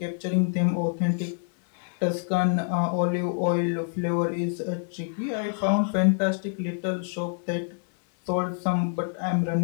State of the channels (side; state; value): right; silent; 60 dB below the other